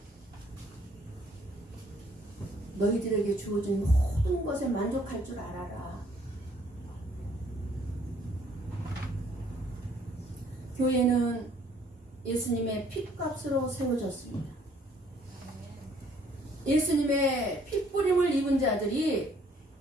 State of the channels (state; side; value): normal; both; correlation 0.63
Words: 너희들에게 주어진 모든 것에 만족할 줄 알아라. 교회는 예수님의 핏값으로 세워졌습니다. 예수님의 핏뿌림을 입은 자들이